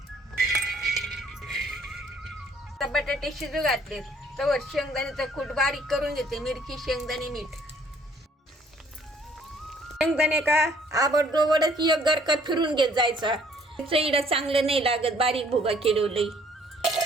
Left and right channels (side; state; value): both; normal; correlation 0.60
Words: आता बटाटे शिजू घातले, तवर शेंगदाण्याचा कूट बारीक करून घेते. मिरची, शेंगदाणे, मीठ. शेंगदाणे का आबडदोबडच एक गरका फिरून घेत जायचा. चईडा चांगलं नाही लागत, बारीक भुगा केलवलंय.